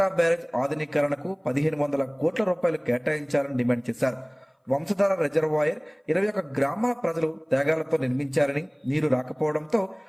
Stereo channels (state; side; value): identical; both; correlation 1.00